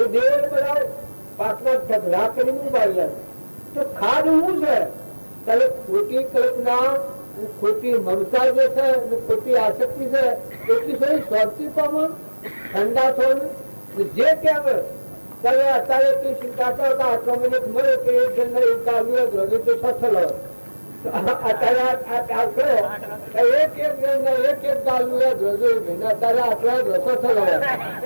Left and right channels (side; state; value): both; inverted; correlation -1.00